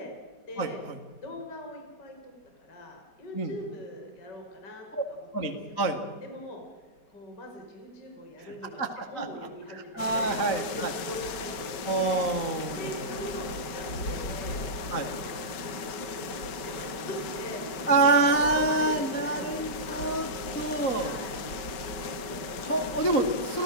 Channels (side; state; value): right; late; 5.2 ms